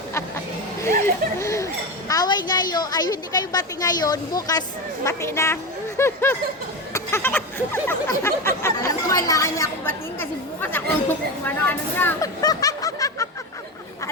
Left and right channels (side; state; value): both; normal; correlation 0.19